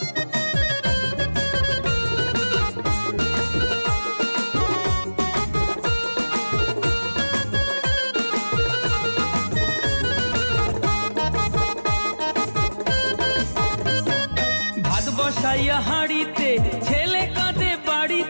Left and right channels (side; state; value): both; inverted; correlation -1.00